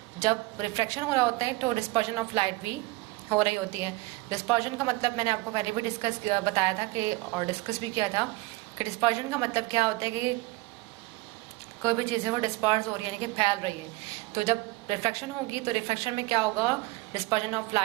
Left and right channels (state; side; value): quieter; left; 21.1 dB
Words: जब रिफ्लेक्शन हो रहा होता है तो डिस्पर्जन ऑफ लाइट भी हो रही होती है. डिस्पर्जन का मतलब मैंने आपको पहले भी बताया था कि और डिस्कस भी किया था कि डिस्पर्जन का मतलब क्या होता है कि कोई भी चीज़ है वो डिस्पर्स हो रही है, यानी कि फैल रही है. तो जब रिफ्लेक्शन होगी तो रिफ्लेक्शन में क्या होगा, डिस्पर्जन ऑफ